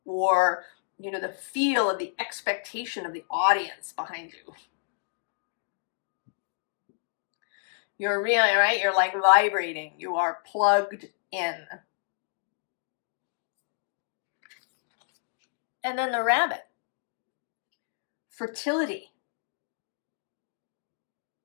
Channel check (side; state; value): right; silent; digital silence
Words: or, the feel of the expectation of the audience behind you. You're really, right? You're like vibrating. You are plugged in. And then the rabbit. Fertility.